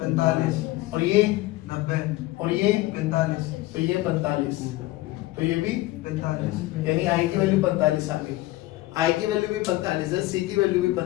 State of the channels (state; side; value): quieter; right; 18.1 dB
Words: 45, और ये 90, और ये 45, तो ये 45, तो ये भी 45, यानी आई की वैल्यू 45 आ गई। आई की वैल्यू भी 45 है, सी की वैल्यू भी